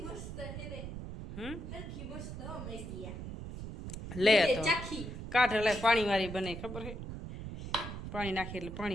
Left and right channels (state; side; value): noise; right; rumble, 8 dB below the sound